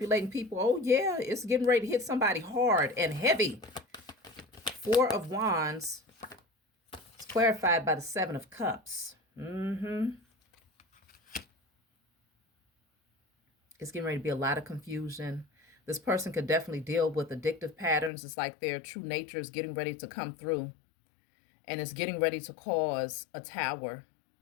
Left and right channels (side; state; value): right; drops out; at 18.1 s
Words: people? Oh, yeah, it's getting ready to hit somebody hard and heavy. Four of Wands. It's clarified by the Seven of Cups. It's getting ready to be a lot of confusion. This person could definitely deal with addictive patterns. It's like their true nature is getting ready to come through. And it's getting ready to cause a tower.